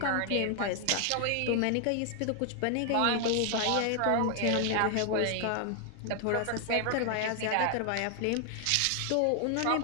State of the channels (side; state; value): both; different; correlation 0.00